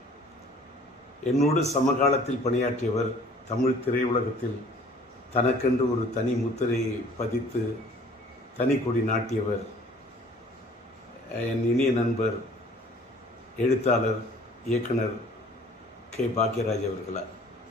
என்னோடு சமகாலத்தில் பணியாற்றியவர், தமிழ் திரையுலகத்தில் தனக்கென்று ஒரு தனி முத்திரை பதித்து தனி கொடி நாட்டியவர், என் இனிய நண்பர் எழுத்தாளர் இயக்குனர் கே. பாக்யராஜ் அவர்களார்.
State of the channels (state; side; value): normal; both; correlation 0.52